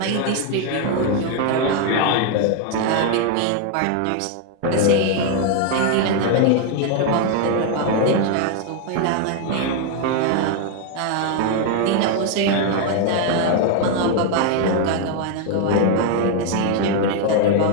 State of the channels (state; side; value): different; both; correlation 0.01